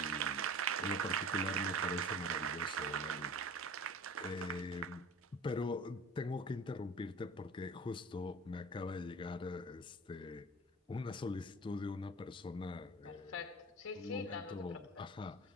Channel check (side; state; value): both; normal; correlation 0.39